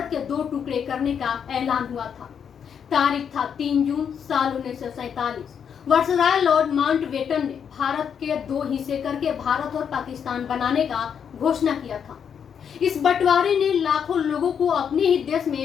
के दो टुकड़े करने का ऐलान हुआ था। तारीख था 3 जून साल 1947। वायसराय लॉर्ड माउंटबेटन ने भारत के दो हिस्से करके भारत और पाकिस्तान बनाने का घोषणा किया था। इस बंटवारे ने लाखों लोगों को अपने ही देश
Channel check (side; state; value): right; quieter; 7.6 dB